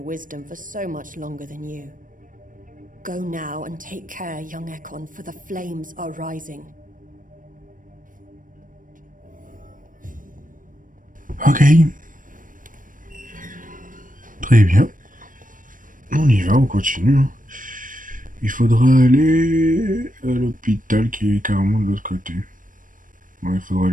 wisdom for so much longer than you. Go now and take care, young Ekon, for the flames are rising. Ok. Très bien. On y va, on continue. Il faudra aller à l'hôpital qui est carrément de l'autre côté. Bon, il faudra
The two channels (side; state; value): left; late; 0.39 ms